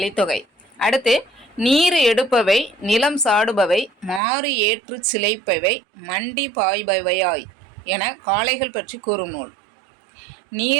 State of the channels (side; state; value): left; drops out; at 4.2 s